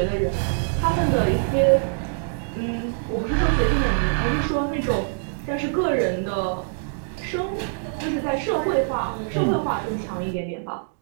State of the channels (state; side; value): silent; left; digital silence